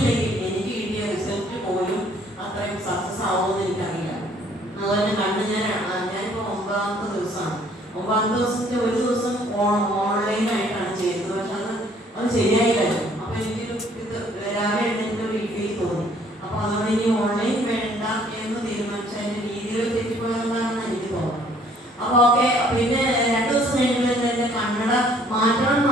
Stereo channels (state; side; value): normal; both; correlation 0.60